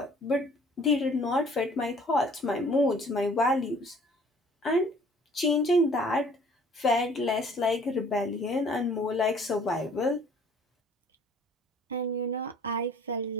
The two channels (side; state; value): both; normal; correlation 0.55